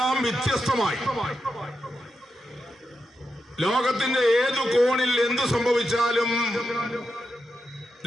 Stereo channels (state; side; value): normal; both; correlation 0.87